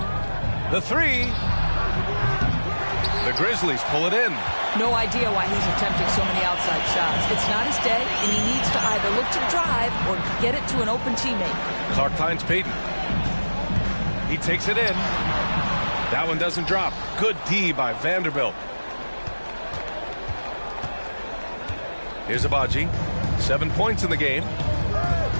The 3. The Grizzlies pull it in. No idea why he's attempting so many outside shots. It's not his day, and he needs to either look to drive or get it to an open teammate. Clark finds Payton. He takes it in. That one doesn't drop. Good D by Vanderbilt. Here's Baaaaby. 7 points in the game.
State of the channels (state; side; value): inverted; both; correlation -1.00